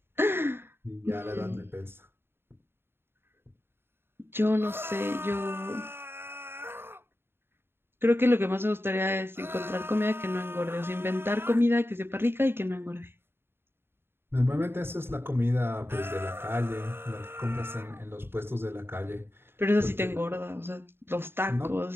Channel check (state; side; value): late; left; 0.11 ms